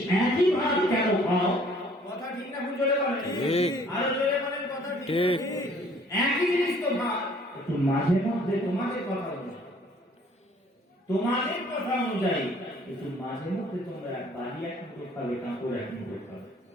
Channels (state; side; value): normal; both; correlation 0.57